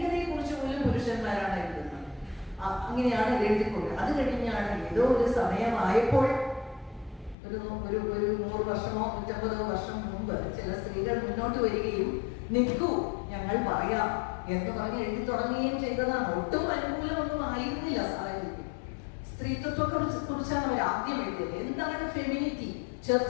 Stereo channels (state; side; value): drops out; right; at 7.4 s